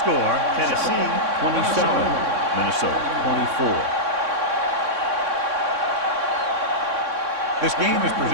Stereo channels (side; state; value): left; late; 3.6 ms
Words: Tennessee 27, Minnesota 24. This game is